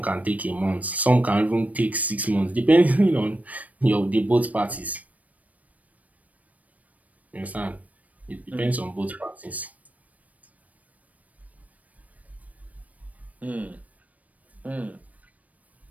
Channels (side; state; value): left; late; 0.070 ms